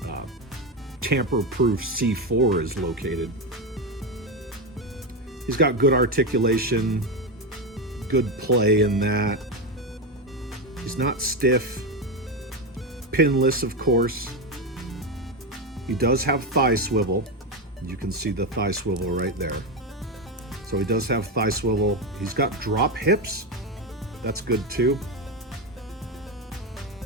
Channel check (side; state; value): both; normal; correlation 0.13